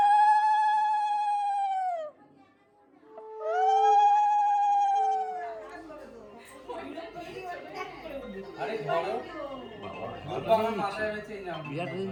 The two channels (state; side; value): identical; both; correlation 1.00